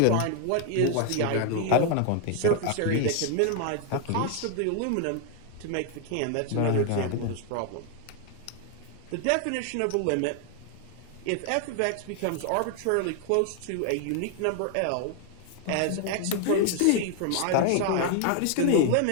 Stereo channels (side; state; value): both; different; correlation 0.00